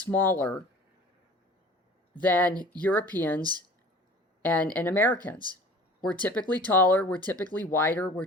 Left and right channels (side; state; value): both; normal; correlation 0.45